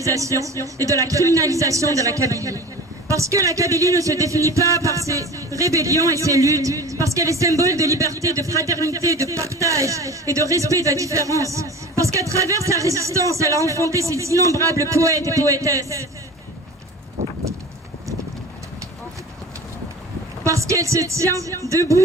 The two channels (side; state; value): both; normal; correlation 0.37